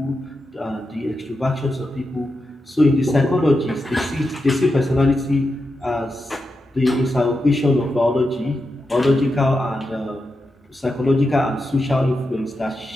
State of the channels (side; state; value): both; normal; correlation 0.88